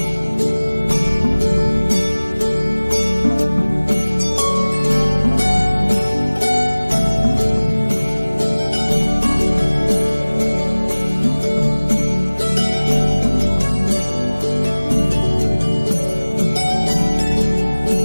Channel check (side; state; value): both; inverted; correlation -1.00